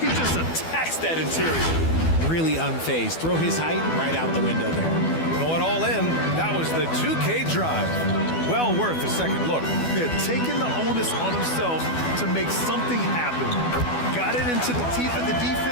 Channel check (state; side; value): late; right; 12 ms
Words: just attacks that interior. Really unfazed. Throw his height right out the window there. Going all in. That was the 2K drive. Well worth a second look. They're taking the onus on himself to make something happen. Got it into the teeth of the